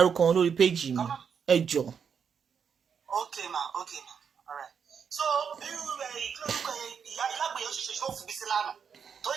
wọn lórí péjì mi ẹ jọ. Okay ma, all right. So irú ìkílórúkọ ìyá alágbèyẹ ṣiṣẹ́ ṣó fún bísí lánàá tó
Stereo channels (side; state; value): left; quieter; 6.9 dB